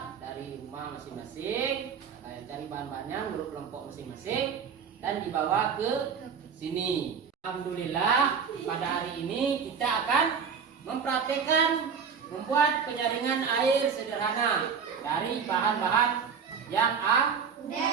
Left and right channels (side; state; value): left; quieter; 6.5 dB